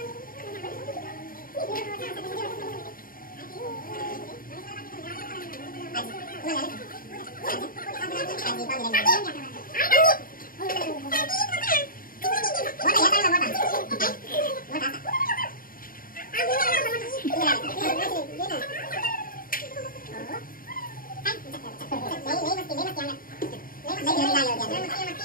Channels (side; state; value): right; late; 0.41 ms